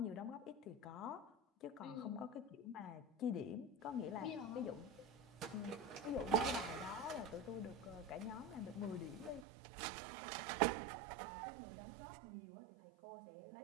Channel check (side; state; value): left; drops out; at 9.5 s